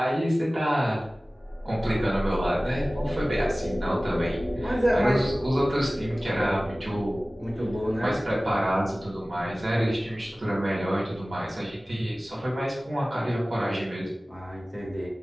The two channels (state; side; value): normal; both; correlation 0.97